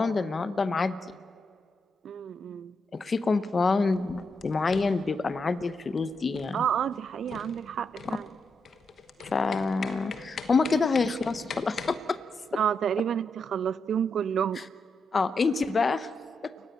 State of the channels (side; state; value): both; normal; correlation 0.83